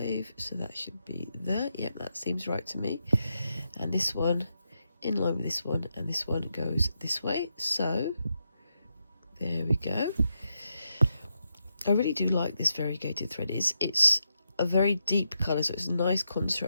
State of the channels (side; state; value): both; inverted; correlation -0.84